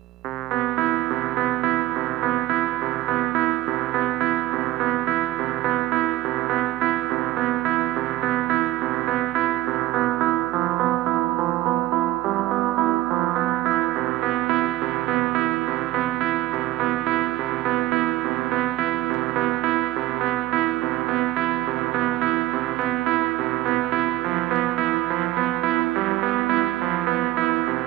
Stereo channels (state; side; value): quieter; left; 16.9 dB